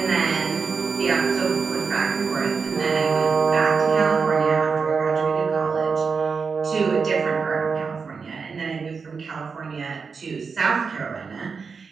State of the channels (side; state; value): left; quieter; 5.3 dB